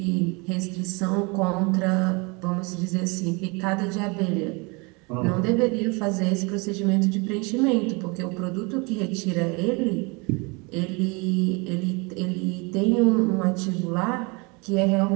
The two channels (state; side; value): quieter; left; 28.9 dB